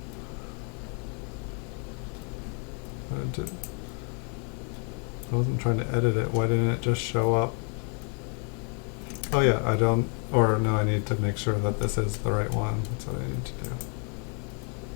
I wasn't trying to edit it. Why didn't it just show up? Oh yeah, I need to make sure that this is the right one. That's what I need to do.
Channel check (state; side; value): quieter; right; 36.8 dB